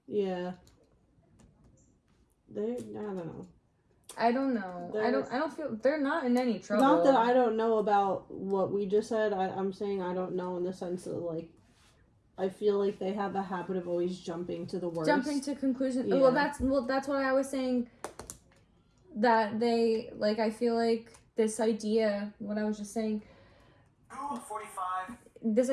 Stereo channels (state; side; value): identical; both; correlation 1.00